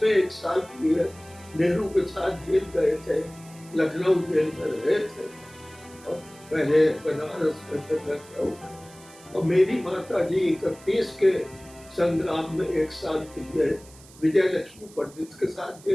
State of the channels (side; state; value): right; noise; hiss, 23 dB below the sound